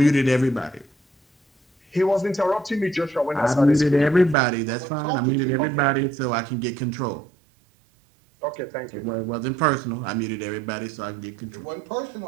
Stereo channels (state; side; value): drops out; left; at 4.4 s